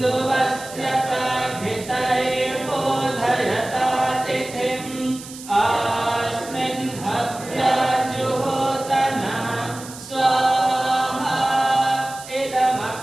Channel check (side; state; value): right; noise; hiss, 15 dB below the sound